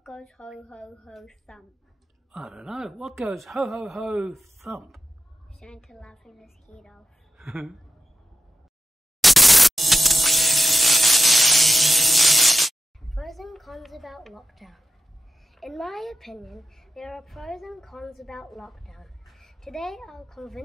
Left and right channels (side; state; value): both; normal; correlation 0.92